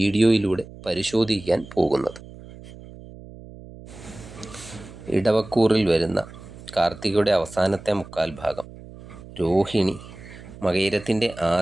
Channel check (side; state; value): right; noise; hum, 17 dB below the sound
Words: പരിശോധിക്കാൻ പോകുന്നത്. ഇടവക്കൂറിൽ വരുന്ന കാർത്തികയുടെ അവസാനത്തെ മുക്കാൽ ഭാഗം, രോഹിണി, മകയിരത്തിൻ്റെ